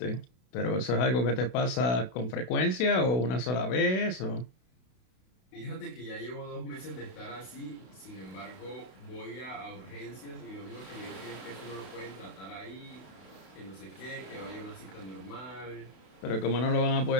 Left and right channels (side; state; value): right; late; 32 ms